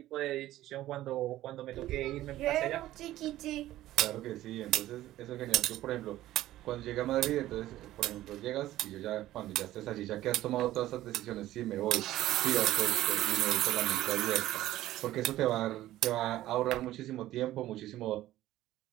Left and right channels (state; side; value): quieter; left; 14.7 dB